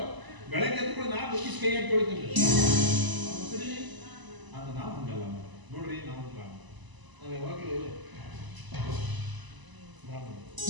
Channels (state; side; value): late; left; 1.0 ms